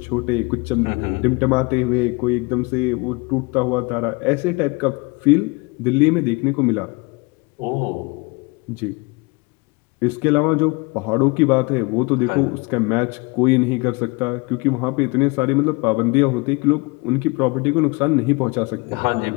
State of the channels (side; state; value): right; quieter; 27.7 dB